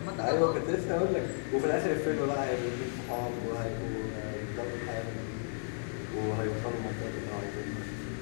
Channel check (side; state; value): right; silent; 55 dB below the other